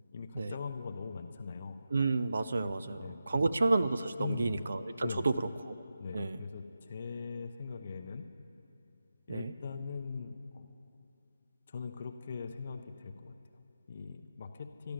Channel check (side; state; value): both; inverted; correlation -0.90